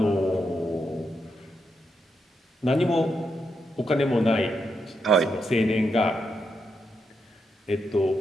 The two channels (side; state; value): both; normal; correlation 0.82